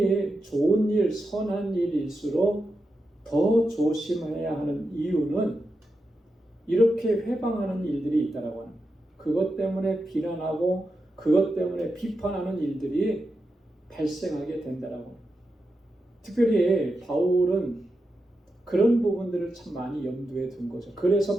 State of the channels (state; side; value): normal; both; correlation 0.88